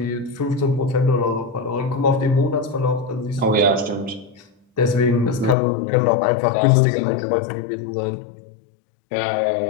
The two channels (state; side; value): drops out; right; at 5.6 s